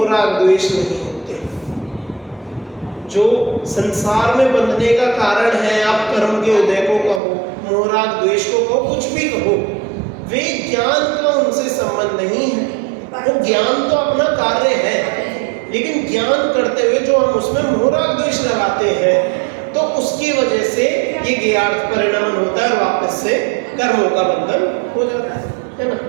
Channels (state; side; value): drops out; left; at 7.2 s